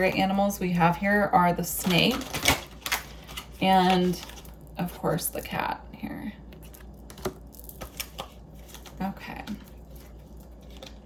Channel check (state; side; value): identical; both; correlation 1.00